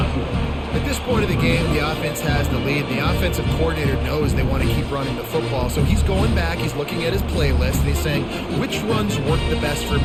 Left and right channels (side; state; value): both; identical; correlation 1.00